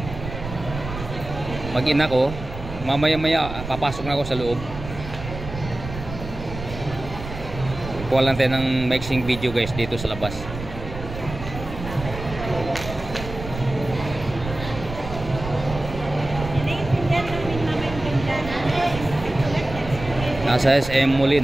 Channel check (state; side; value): noise; right; rumble, 10 dB below the sound